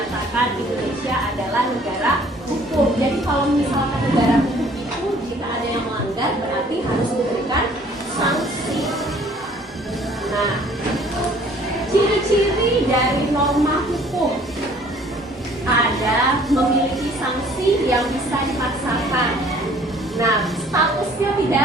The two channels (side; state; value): both; normal; correlation 0.56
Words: Indonesia adalah negara hukum. Jadi kalau misalkan negara hukum itu jika ada yang melanggar berarti harus diberikan sanksi. Nah, ciri-ciri dari norma hukum ada memiliki sanksi yang bisa dipaksakan. Nah, statusnya